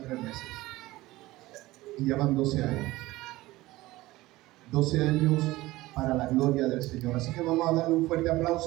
3 meses. Y ya van 12 años. 12 años para la gloria del Señor. Así que vamos a darle un fuerte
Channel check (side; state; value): left; quieter; 18.5 dB